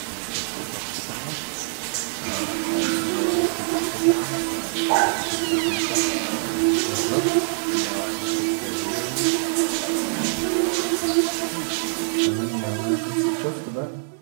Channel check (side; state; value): left; silent; digital silence